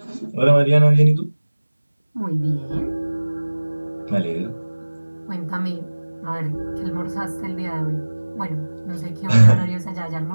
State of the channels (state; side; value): inverted; both; correlation -1.00